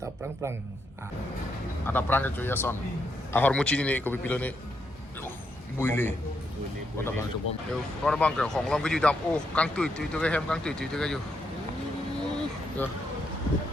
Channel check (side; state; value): both; normal; correlation 0.80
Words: prang ada prang ke ya son ahor muci ni ko pipilo ni buile Kota bang coba yo kota bang ke hong long ke ju dam oh kang tui ke hem kang tui ke ju Yo.